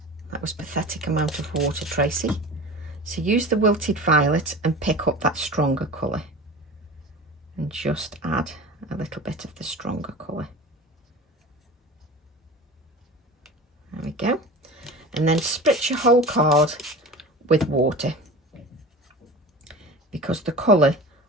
That was pathetic amount of water, Tracy. So use the wilted violet and pick up that stronger colour. And just add a little bit of the stronger colour. There we go. And then spritz your whole card with water, because the colour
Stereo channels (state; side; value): normal; both; correlation 0.35